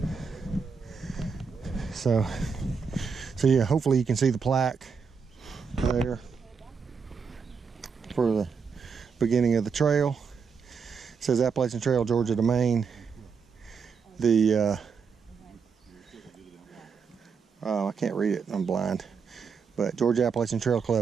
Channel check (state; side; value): quieter; left; 5.8 dB